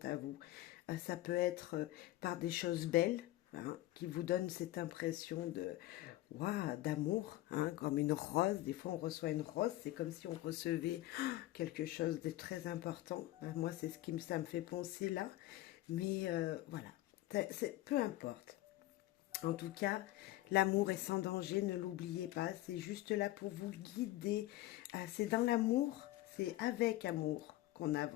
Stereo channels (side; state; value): right; quieter; 16.6 dB